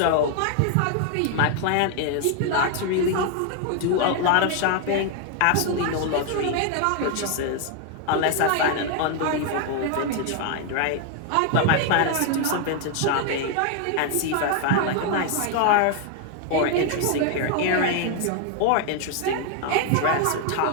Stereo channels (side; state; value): both; different; correlation 0.00